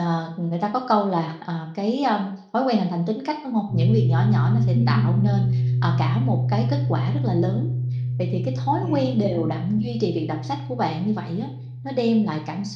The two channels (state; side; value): identical; both; correlation 1.00